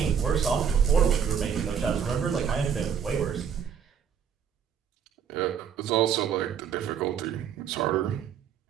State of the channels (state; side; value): quieter; left; 7.7 dB